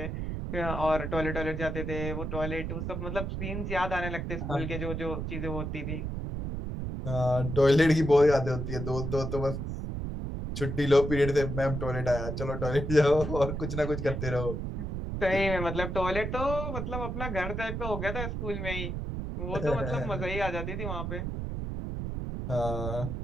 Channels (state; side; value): noise; right; rumble, 4 dB below the sound